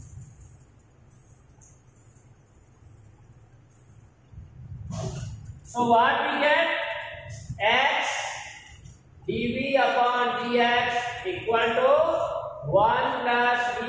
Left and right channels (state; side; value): identical; both; correlation 1.00